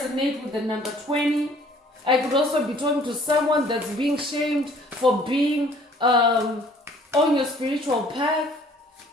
with the number 20. I could also be talking to someone that's being shamed for being on your spiritual path.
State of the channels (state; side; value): normal; both; correlation 0.56